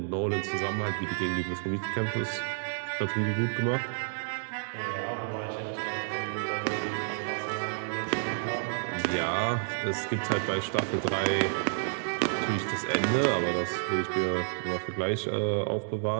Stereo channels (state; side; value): silent; left; digital silence